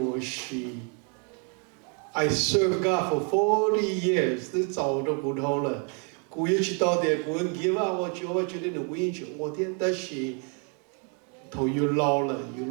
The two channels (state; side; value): quieter; left; 38.6 dB